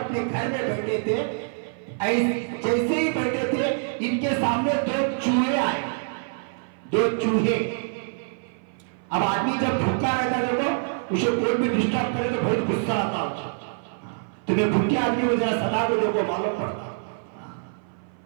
گھر میں بیٹھے تھے، جیسے ہی بیٹھے تھے ان کے سامنے 2 چوہے آئے، 2 چوہے۔ اب آدمی جب بھوکا رہتا ہے تو اسے کوئی بھی ڈسٹرب کرے تو بہت غصہ آتا ہے، تمہیں بھوکے آدمی کو ذرا صدا کو دیکھو معلوم پڑتا۔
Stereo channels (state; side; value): silent; left; 56 dB below the other